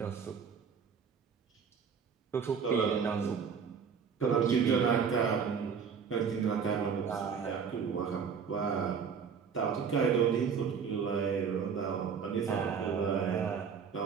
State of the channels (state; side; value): quieter; left; 6.5 dB